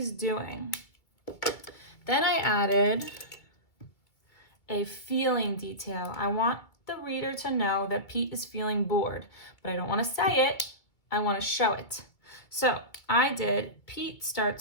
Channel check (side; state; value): right; late; 2.4 ms